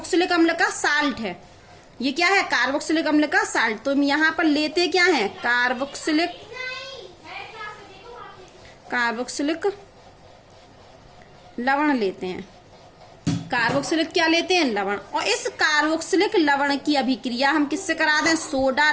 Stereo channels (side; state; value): both; identical; correlation 1.00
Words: अम्ल का साल्ट है। ये क्या है, कार्बोक्सिलिक अम्ल का साल्ट। तो हम यहाँ पर लेते क्या है, कार्बोक्सिलिक लवण लेते हैं। कार्बोक्सिलिक क्या लेते हैं, लवण। और इस कार्बोक्सिलिक लवण की अभिक्रिया हम किससे करा दें, सोडा